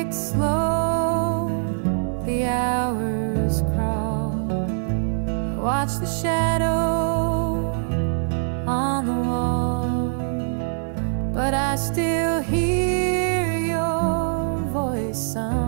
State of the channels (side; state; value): left; silent; digital silence